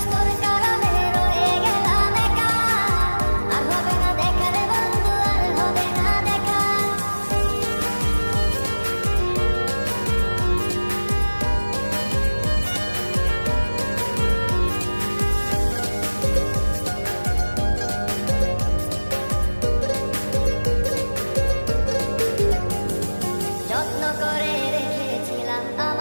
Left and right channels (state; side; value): inverted; both; correlation -1.00